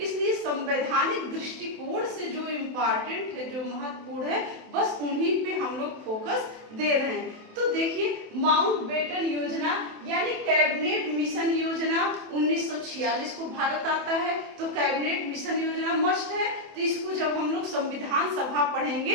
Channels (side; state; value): left; late; 27 ms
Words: संवैधानिक दृष्टिकोण से जो इम्पोर्टेंट है, जो महत्वपूर्ण है, बस उन्हीं पे हम लोग फोकस दे रहे हैं। तो देखिए, माउंटबेटन योजना यानी कैबिनेट मिशन योजना 1946 को भारत आता है, तो कैबिनेट मिशन योजना मस्ट है। तो इसको जब हम लोग संविधान सभा